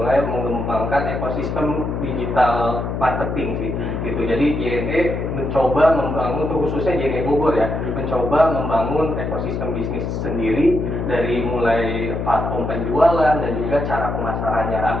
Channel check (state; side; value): noise; left; hum, 3 dB below the sound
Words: mengembangkan ekosistem digital marketing sih, gitu. Jadi JNE mencoba membangun, khususnya JNE Bogor ya, mencoba membangun ekosistem bisnis sendiri dari mulai platform penjualan dan juga cara pemasarannya